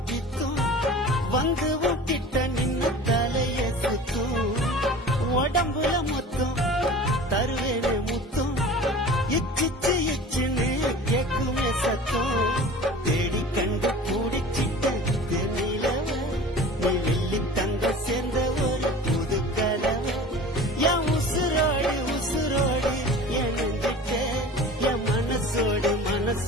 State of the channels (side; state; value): both; normal; correlation 0.40